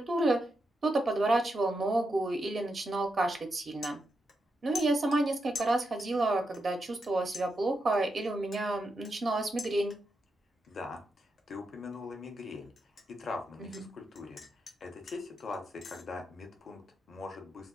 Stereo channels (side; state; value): both; normal; correlation 0.85